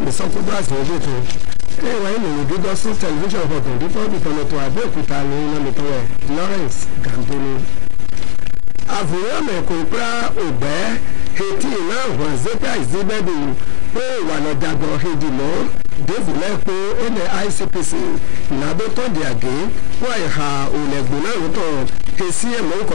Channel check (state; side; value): quieter; right; 27.7 dB